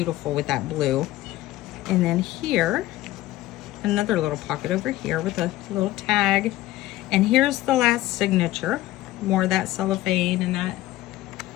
with that blue. And then here, another little pocket over here with a little tag. And here's the last signature. More of that cellophane and that.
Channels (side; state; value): right; quieter; 16.2 dB